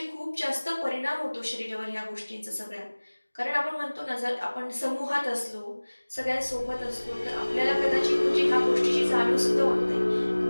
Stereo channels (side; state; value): both; inverted; correlation -1.00